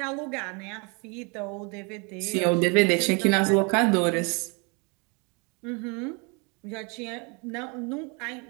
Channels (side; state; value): left; quieter; 31.8 dB